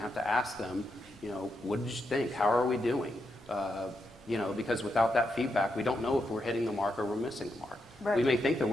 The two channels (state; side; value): normal; both; correlation 0.83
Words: to ask them, you know, what did you think? How are we doing? You know, because without that feedback, we don't know if we're hitting the mark or we're missing the mark. Right. We may think that